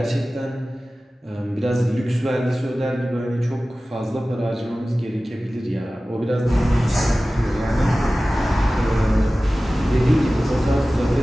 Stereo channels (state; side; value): normal; both; correlation 0.96